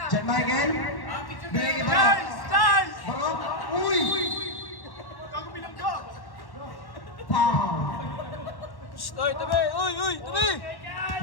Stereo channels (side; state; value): right; late; 1.1 ms